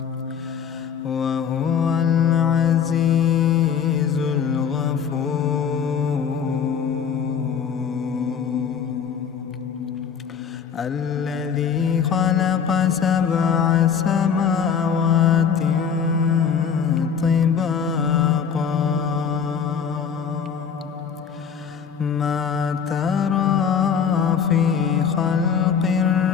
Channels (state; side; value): quieter; right; 7.1 dB